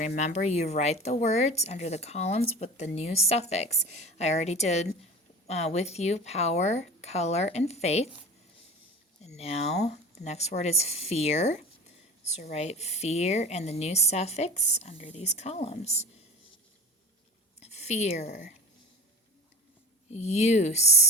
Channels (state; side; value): normal; both; correlation 0.34